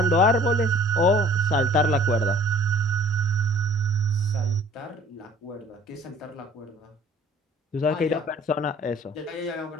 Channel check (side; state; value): both; normal; correlation 0.53